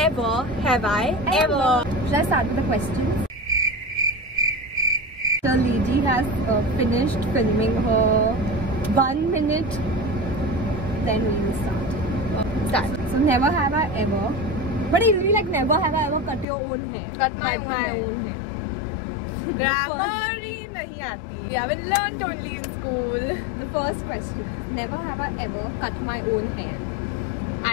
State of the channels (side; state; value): right; drops out; at 16.4 s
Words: Have I Ever. Should I start with the questions? The lady has finished filming her 1 minute. Then we will start. So never have I ever. But it will be like never have I ever cut your own hair. Cut my own hair. Grammar nahi aati. We haven't learnt only in school. The first question. Never have I ever cut my own hair.